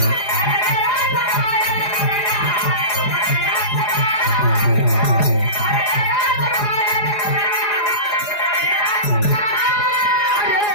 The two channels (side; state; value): right; late; 4.8 ms